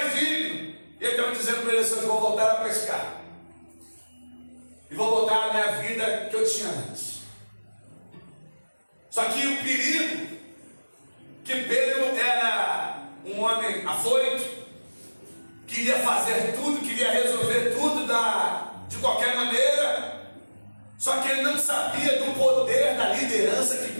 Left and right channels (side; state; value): both; inverted; correlation -1.00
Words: digno. E ele estava dizendo para ele assim: eu vou voltar a pescar. E vou voltar à minha vida que eu tinha antes. Só que o perigo, que Pedro era um homem afoito, queria fazer tudo, queria resolver tudo de qualquer maneira. Só que ele não sabia do poder da liderança que